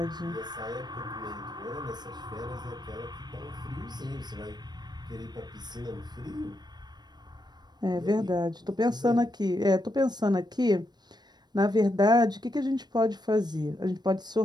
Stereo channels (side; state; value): left; late; 0.20 ms